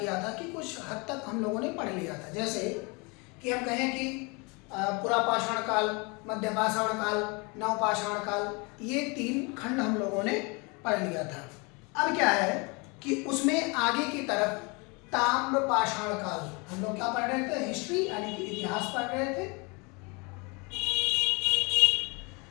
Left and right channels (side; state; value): right; quieter; 29.6 dB